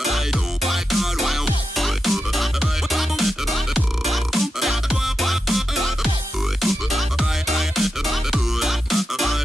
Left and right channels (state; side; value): normal; both; correlation 0.88